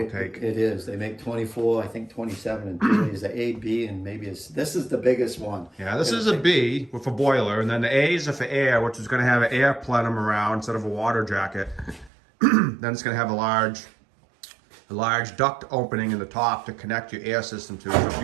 take. It is. They make 24, I think 27 and 30 is the A, B, and maybe this is the biggest one. Yeah, this is a B with a boiler, and then the A's are for air, which is going to have an air plenum around instead of a water jacket. Then it's going to have a large duct opening in the top to connect your air system to. So if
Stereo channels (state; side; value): drops out; left; at 12.1 s